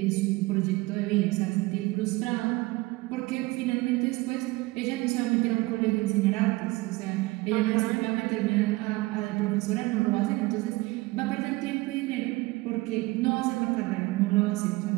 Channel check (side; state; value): left; quieter; 21.7 dB